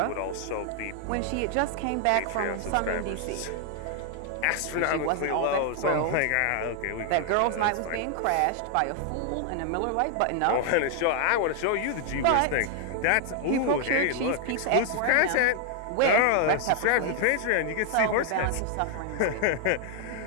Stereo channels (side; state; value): both; different; correlation 0.00